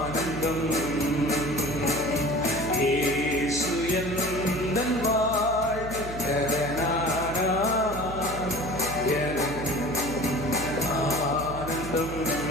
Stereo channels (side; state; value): right; noise; hum, 10 dB below the sound